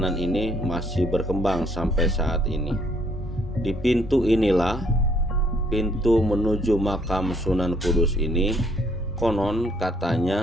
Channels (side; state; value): both; normal; correlation 0.66